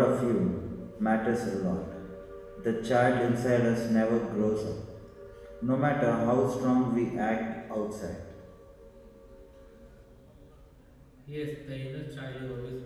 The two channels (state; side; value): identical; both; correlation 1.00